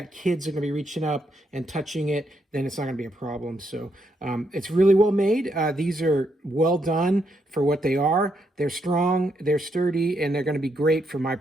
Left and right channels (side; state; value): both; normal; correlation 0.78